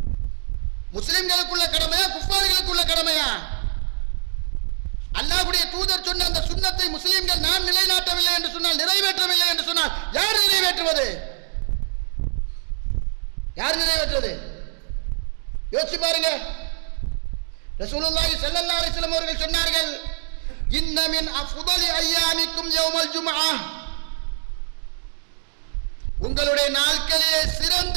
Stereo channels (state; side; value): silent; left; digital silence